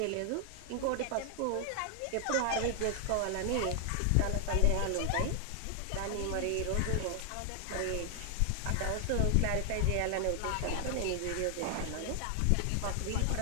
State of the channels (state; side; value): different; both; correlation 0.00